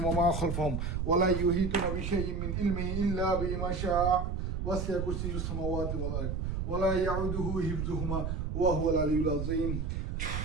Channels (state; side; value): noise; right; rumble, 2 dB below the sound